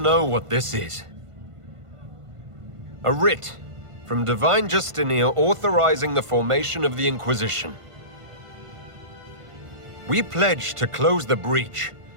what this is. A writ from Divine Justinia authorizing the formation of the Inquisition. We pledge to close the breach,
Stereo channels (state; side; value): late; left; 1.5 ms